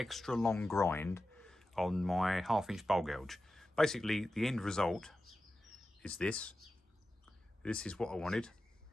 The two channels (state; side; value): normal; both; correlation 0.93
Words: long grind on my 1/2 inch bowl gouge. Basically the end result is this. This is what I wanted.